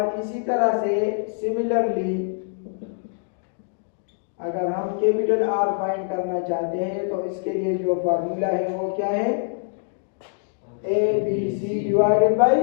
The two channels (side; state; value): right; silent; digital silence